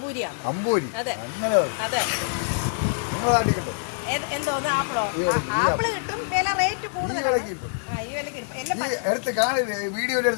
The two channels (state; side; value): silent; right; digital silence